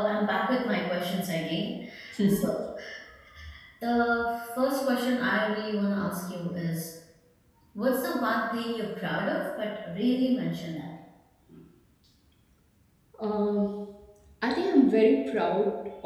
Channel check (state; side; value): identical; both; correlation 1.00